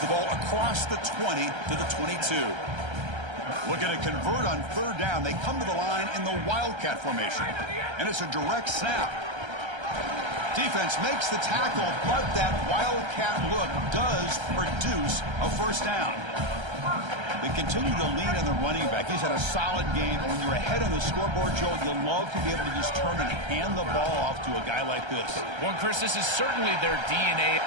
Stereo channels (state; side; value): late; left; 1.3 ms